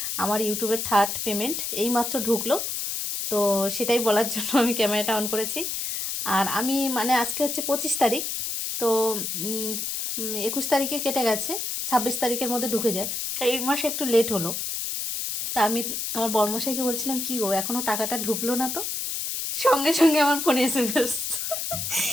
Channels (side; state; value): left; noise; hiss, 3 dB below the sound